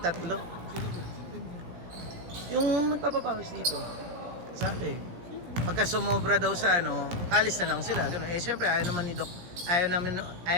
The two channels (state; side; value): late; left; 17 ms